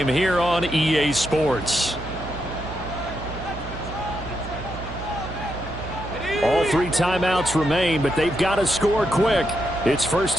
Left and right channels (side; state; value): right; noise; hum, 10 dB below the sound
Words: here on EA Sports. All 3 timeouts remain, but they've got to score quick. It's